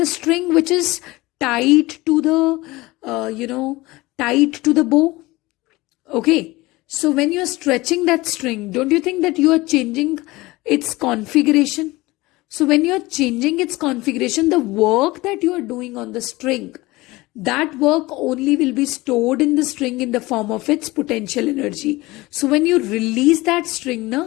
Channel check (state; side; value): quieter; right; 20.6 dB